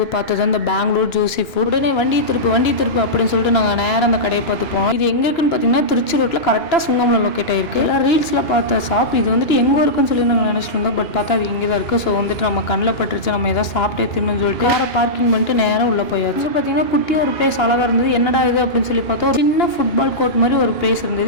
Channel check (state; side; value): late; right; 2.9 ms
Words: பார்த்தது அந்த பெங்களூர் ஜூசி ஃபுட். உடனே வண்டி திருப்பு அப்படின்னு சொல்லிட்டு நாங்கள் நேரம் அந்த கடையை பார்த்து போனோம். இது எங்கே இருக்குன்னு பார்த்தீங்கன்னா திருச்சி ரோட்டில் கரெக்டாக சுங்கம்ல லொக்கேட் ஆயிருக்கு. எல்லாம் ரீல்ஸில் பார்த்த ஷாப் இது வந்துட்டு எங்கே இருக்குன்னு சொல்லி நாங்கள் நினச்சிட்டு இருந்தோம். பட் பார்த்தா அது இங்கே தான் இருக்குது. ஸோ வந்துட்டு நம்ம கண்ணில் பட்டுருச்சு, நம்ம எதாவது சாப்பிட்டே தின்னு சொல்லிட்டு வேறு பார்க்கிங் பண்ணிட்டு நேரம் உள்ளே போயாச்சு. பார்த்தீங்கன்னா குட்டி ஒரு பிளேஸ் அழகாக இருந்தது. என்னடா இது அப்படின்னு சொல்லி பார்த்தோம். ஒரு சின்ன ஃபுட்பால் கோர்ட் மாதிரி ஒரு பிளேஸ்